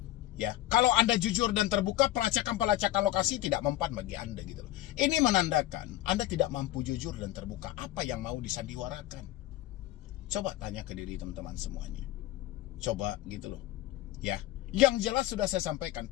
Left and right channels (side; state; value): right; quieter; 14.7 dB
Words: Ya, kalau Anda jujur dan terbuka, pelacakan lokasi tidak mempan bagi Anda gitu loh. Ini menandakan Anda tidak mampu jujur dan terbuka. Apa yang mau disandiwarakan? Coba tanya ke diri teman-teman semuanya. Coba gitu loh. Ya, yang jelas sudah saya sampaikan,